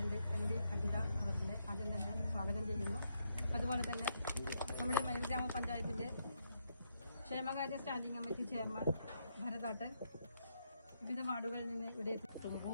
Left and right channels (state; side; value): inverted; both; correlation -0.78